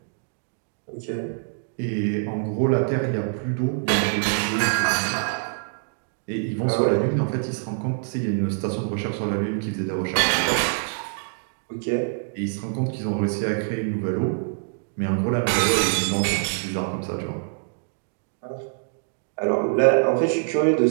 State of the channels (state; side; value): silent; left; digital silence